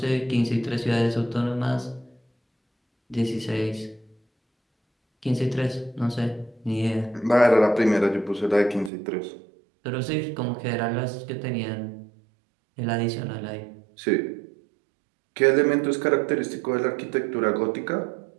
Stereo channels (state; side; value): drops out; left; at 8.9 s